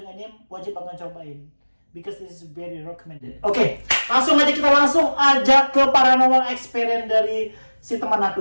Enim wajib banget cobain because this is very recommended. Oke, langsung aja kita ajak ke paranormal experience dari si teman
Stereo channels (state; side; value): inverted; both; correlation -1.00